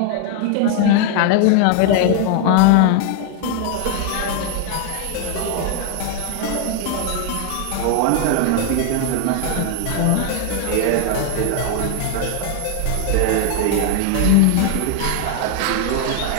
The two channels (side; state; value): both; different; correlation 0.00